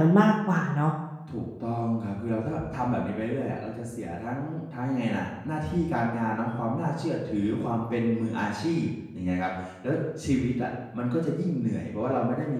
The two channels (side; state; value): both; identical; correlation 1.00